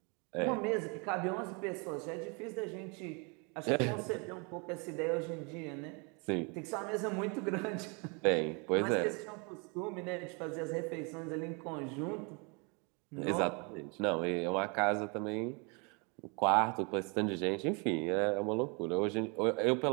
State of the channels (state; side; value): quieter; left; 32.8 dB